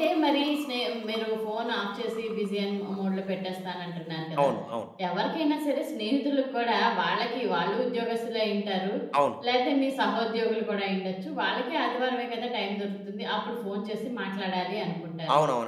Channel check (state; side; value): identical; both; correlation 1.00